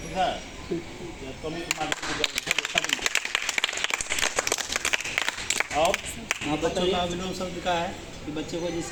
ठीक है। और बच्चों का विलोम शब्द का है कि बच्चे को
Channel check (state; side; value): identical; both; correlation 1.00